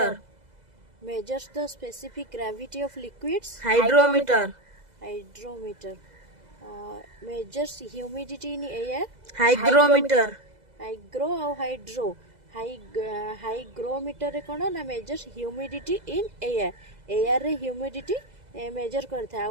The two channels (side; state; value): left; late; 2.0 ms